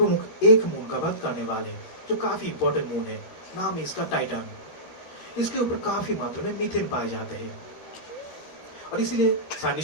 एक मून का बात करने वाले हैं जो काफी इंपॉर्टेंट मून है, नाम है इसका टाइटन। इसके ऊपर काफी मात्रा में मीथेन पाए जाते हैं और इसीलिए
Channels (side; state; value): right; late; 12 ms